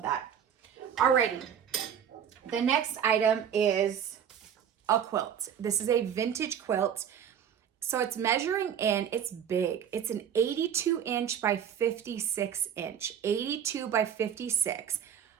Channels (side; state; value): left; quieter; 8.6 dB